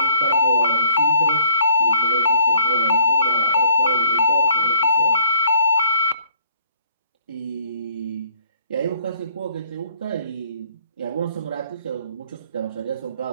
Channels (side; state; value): both; inverted; correlation -0.60